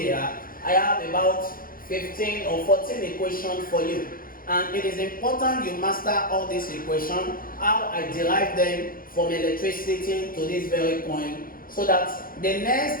I have about 15 or 14 equations for you. And it is important you master all these equations, how I derive them from electricity to this very point, so that the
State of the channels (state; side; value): late; right; 0.41 ms